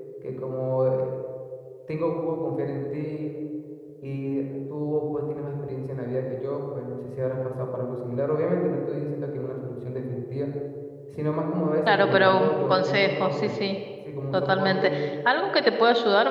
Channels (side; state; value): both; identical; correlation 1.00